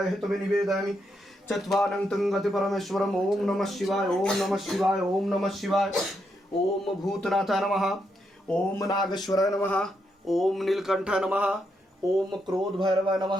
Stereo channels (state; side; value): normal; both; correlation 0.80